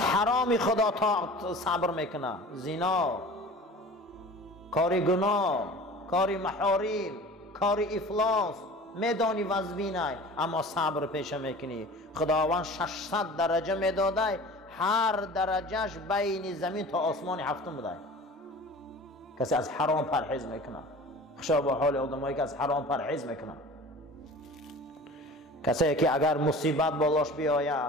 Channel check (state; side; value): normal; both; correlation 0.41